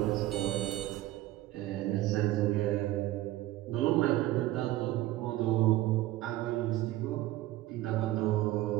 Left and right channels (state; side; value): quieter; left; 16.1 dB